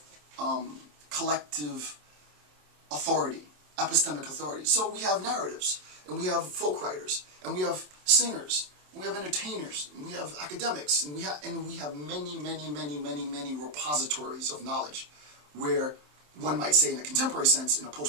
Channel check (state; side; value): late; left; 27 ms